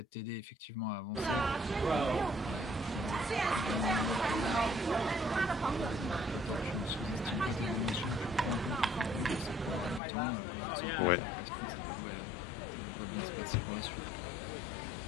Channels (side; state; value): right; drops out; at 10.0 s